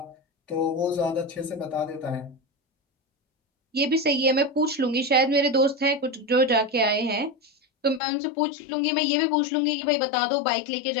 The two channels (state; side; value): drops out; right; at 8.0 s